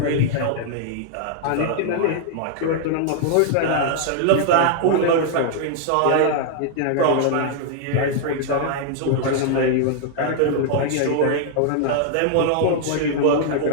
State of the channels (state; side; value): different; both; correlation 0.00